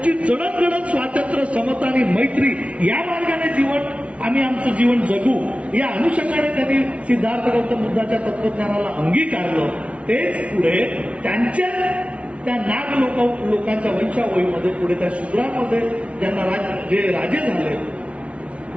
जडणघडण स्वातंत्र्य, समता आणि मैत्री या मार्गाने आम्ही आमचं जीवन जगू या अनुषंगाने त्यांनी सिद्धार्थ गौतम बुद्धाच्या तत्वज्ञानाला अंगीकारलं. तेच पुढे त्यांच्या त्या नाग लोकांच्या वंशावळीमध्ये पुढे त्या शूद्रांमध्ये ज्यांना जे राजे झाले,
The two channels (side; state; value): left; late; 0.062 ms